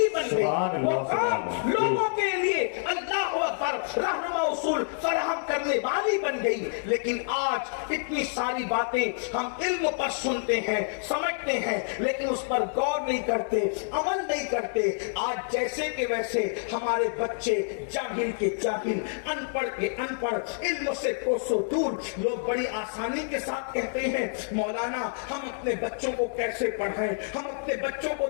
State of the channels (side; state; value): right; silent; digital silence